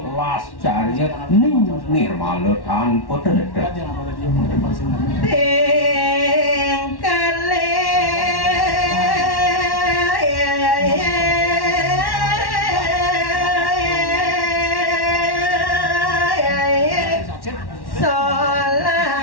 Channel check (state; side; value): late; right; 1.1 ms